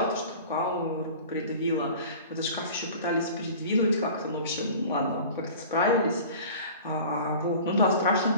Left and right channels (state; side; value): inverted; both; correlation -0.41